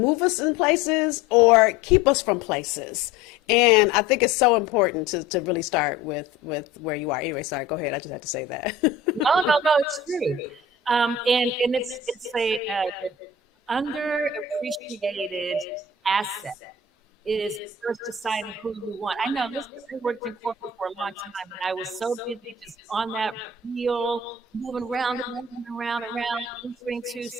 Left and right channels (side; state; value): right; quieter; 4.2 dB